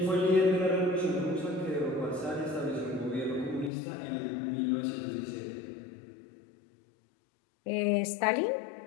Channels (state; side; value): drops out; right; at 3.7 s